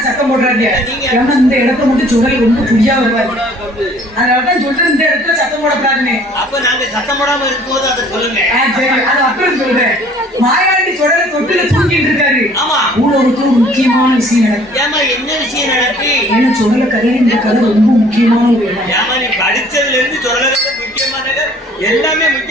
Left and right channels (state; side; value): normal; both; correlation 0.55